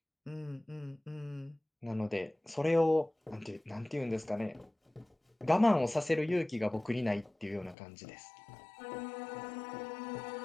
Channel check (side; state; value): right; drops out; at 7.8 s